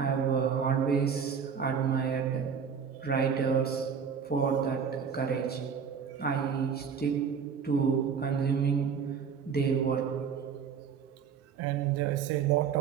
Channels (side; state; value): left; quieter; 6.7 dB